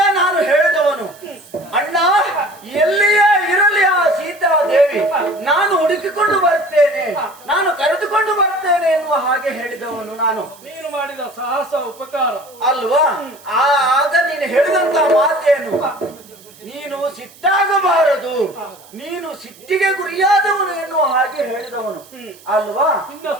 ನಾನು ಹೇಳಿದವನು, ಅಣ್ಣ ಎಲ್ಲಿಯೇ ಇರಲಿ ಆ ಸೀತಾದೇವಿ ನಾನು ಹುಡುಕಿಕೊಂಡು ಬರ್ತೇನೆ, ನಾನು ಕರೆದುಕೊಂಡು ಬರ್ತೇನೆ ಎನ್ನುವ ಹಾಗೆ ಹೇಳಿದವನು ನಾನು. ನೀನು ಮಾಡಿದ ಸಾಹಸ ಉಪಕಾರ ಅಲ್ವಾ? ಆಗ ನೀನು ಹೇಳಿದಂತ ಮಾತೇನು, ನೀನು ಸಿಟ್ಟಾಗಬಾರದು, ನೀನು ಸಿಟ್ಟಿಗೆ ಗುರಿಯಾದವನು ಎನ್ನುವ ಹಾಗೆ ಹೇಳಿದವನು ಅಲ್ವಾ? ನಿನ್ನ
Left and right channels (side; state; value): right; noise; hiss, 24 dB below the sound